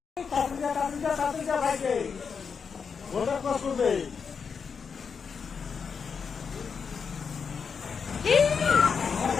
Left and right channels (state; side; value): quieter; right; 6.0 dB